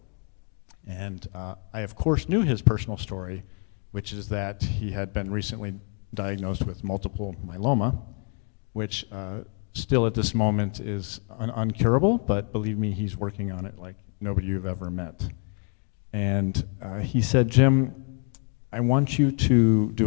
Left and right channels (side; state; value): right; quieter; 39.1 dB